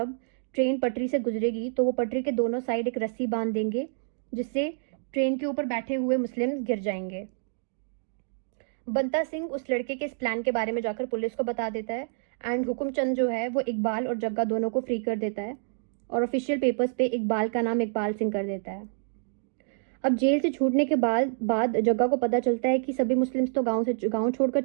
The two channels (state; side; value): silent; left; digital silence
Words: ट्रेन पटरी से गुजरेगी तो वो पटरी के दोनों साइड एक रस्सी बांध देंगे, जिससे ट्रेन के ऊपर बैठे हुए मुस्लिम गिर जाएंगे। बंता सिंह उस लड़के के इस प्लान के बारे में जाकर पुलिस को बता देता है एंड हुकुमचंद जो है वो इकबाल और जग्गा दोनों को फ्री कर देता है और ऑफिशियल पेपर्स पे इकबाल का नाम इकबाल सिंह कर देता है। अब जेल से छूटने के बाद जग्गा को पता चलता है कि सभी मुस्लिम्स तो गांव छोड़कर